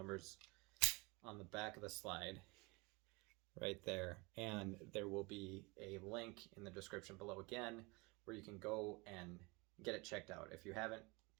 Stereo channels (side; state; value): left; quieter; 26.5 dB